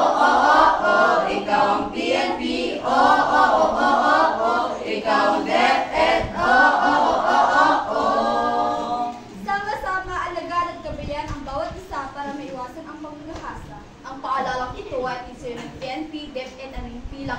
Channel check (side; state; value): both; identical; correlation 1.00